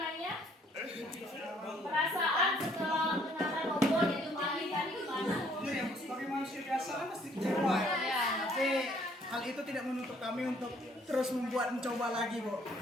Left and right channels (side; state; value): both; normal; correlation 0.63